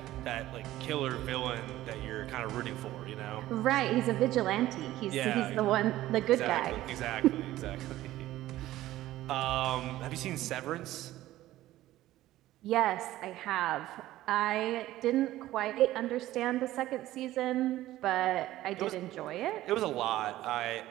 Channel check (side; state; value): left; quieter; 15.2 dB